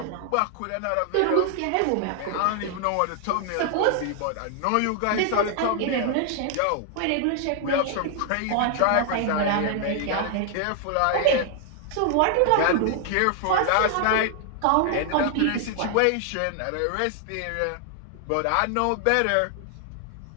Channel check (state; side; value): different; both; correlation 0.00